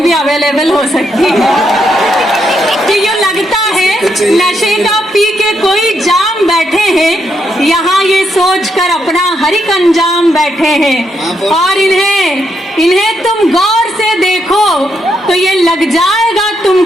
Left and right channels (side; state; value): both; normal; correlation 0.78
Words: भी अवेलेबल हो सकती है। कि यूँ लगता है नशे का पी के कोई जाम बैठे हैं, यहाँ ये सोच कर अपना हर एक अंजाम बैठे हैं। और इन्हें तुम गौर से देखो तो ये लग जाएगा